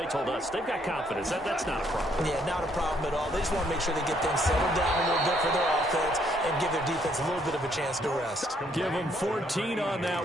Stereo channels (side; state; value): both; normal; correlation 0.69